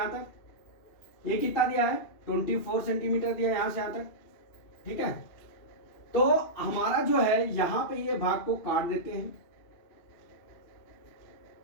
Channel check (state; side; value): late; right; 2.8 ms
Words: तक। ये कितना दिया है 24 सेंटीमीटर दिया है यहां से यहां तक। ठीक है, तो हमारा जो है यहां पे ये भाग को काट देते हैं।